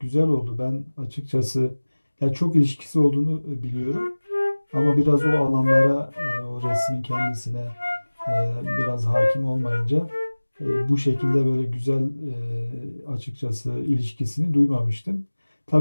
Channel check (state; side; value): inverted; both; correlation -1.00